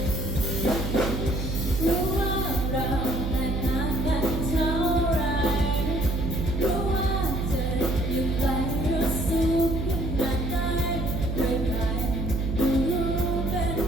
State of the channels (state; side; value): noise; right; hum, 2 dB below the sound